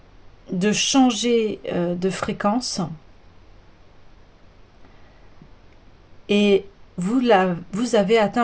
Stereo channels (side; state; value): both; identical; correlation 1.00